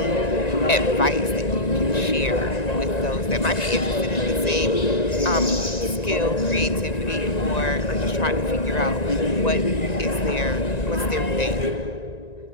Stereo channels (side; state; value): right; late; 1.9 ms